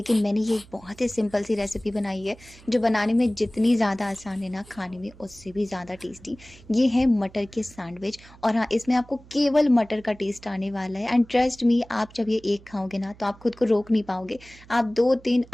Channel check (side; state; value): right; noise; hum, 23 dB below the sound